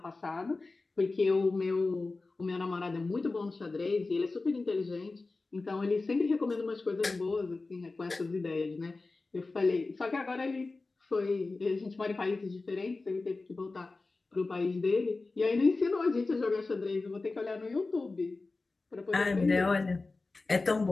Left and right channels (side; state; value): right; quieter; 3.6 dB